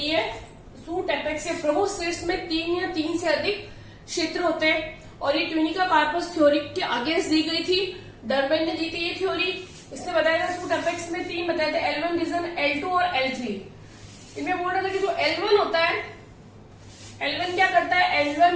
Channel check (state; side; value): identical; both; correlation 1.00